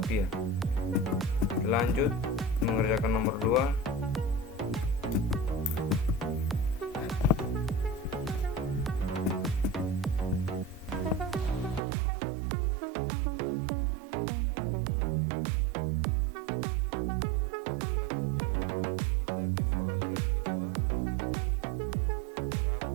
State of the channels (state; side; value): drops out; left; at 11.8 s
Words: Lanjut mengerjakan nomor 2. Oke, selanjutnya kita ke soal yang kedua, menghitung